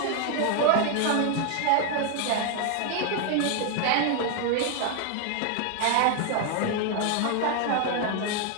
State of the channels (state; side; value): different; both; correlation 0.00